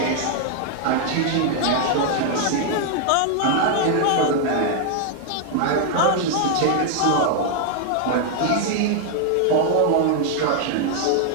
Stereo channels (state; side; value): different; both; correlation 0.00